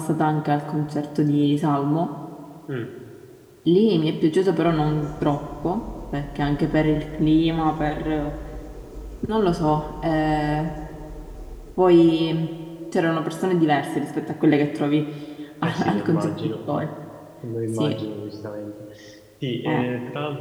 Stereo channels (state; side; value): identical; both; correlation 1.00